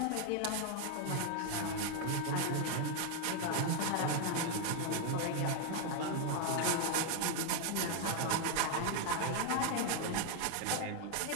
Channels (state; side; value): different; both; correlation 0.01